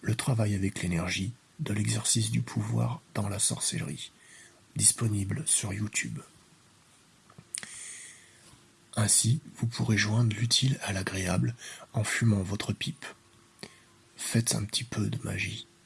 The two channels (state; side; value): identical; both; correlation 1.00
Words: Le travail avec l'énergie, de l'exercice du pouvoir dans la sorcellerie », disponible sur YouTube. Ainsi, vous pourrez joindre l'utile à l'agréable en fumant votre pipe. Faites un petit peu de magie.